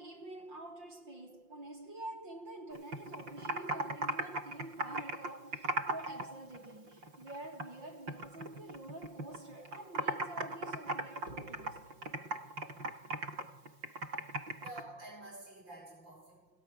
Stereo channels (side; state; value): left; late; 5.7 ms